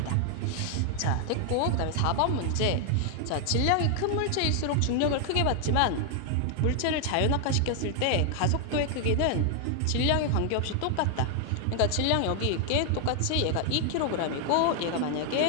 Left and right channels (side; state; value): both; different; correlation 0.00